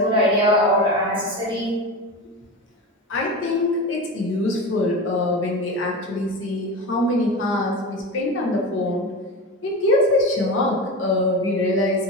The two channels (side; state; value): both; normal; correlation 0.25